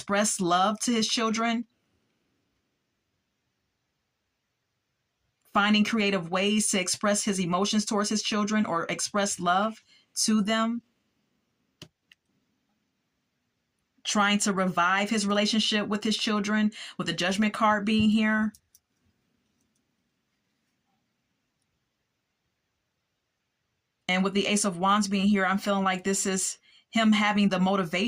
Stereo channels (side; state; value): both; identical; correlation 1.00